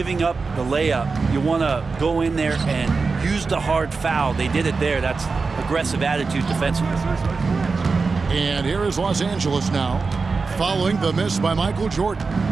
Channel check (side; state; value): left; quieter; 4.4 dB